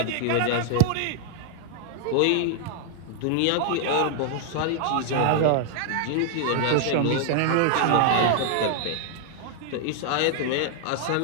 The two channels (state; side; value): different; both; correlation 0.00